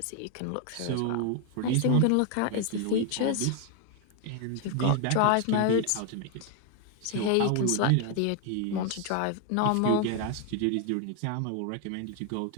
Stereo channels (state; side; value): different; both; correlation 0.01